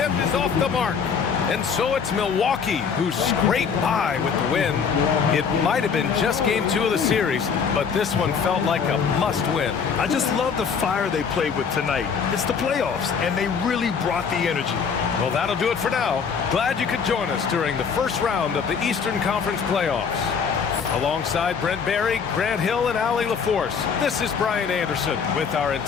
is off the mark. And so it's Milwaukee who scraped by with the win. It might have been just game 2 of the series, but this one felt like a must-win. I just love the fire they played with tonight. It's the playoffs, and they really brought the energy. Well, that'll do it for now. Glad you could join us during the first round of the Eastern Conference playoffs. Alongside Brent Barry, Grant Hill, and Allie LaForce, this is Brian Anderson with our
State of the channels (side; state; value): right; quieter; 6.3 dB